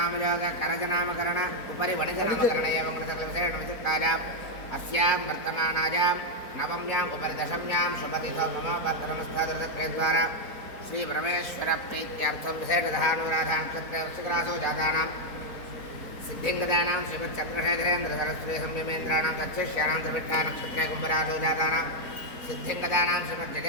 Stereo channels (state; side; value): late; right; 4.4 ms